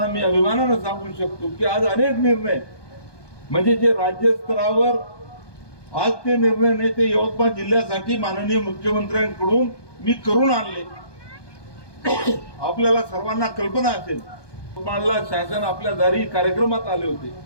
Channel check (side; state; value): right; late; 1.2 ms